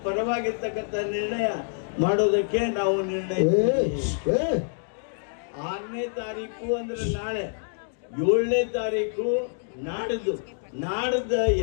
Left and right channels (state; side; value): silent; right; digital silence